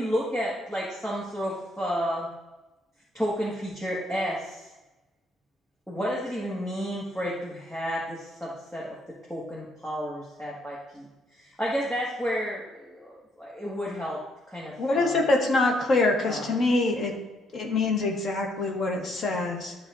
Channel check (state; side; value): normal; both; correlation 0.71